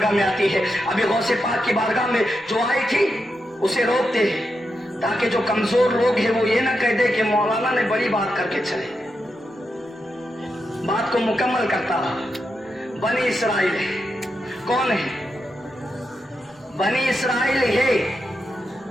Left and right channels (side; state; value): both; normal; correlation 0.86